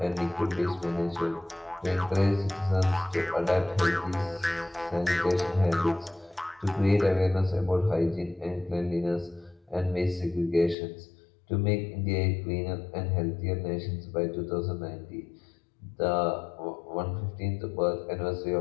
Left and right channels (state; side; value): drops out; right; at 10.8 s